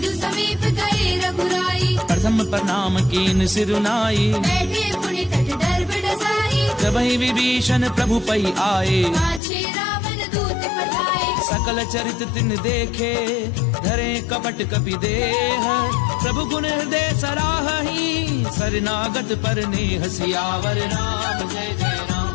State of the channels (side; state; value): right; drops out; at 9.4 s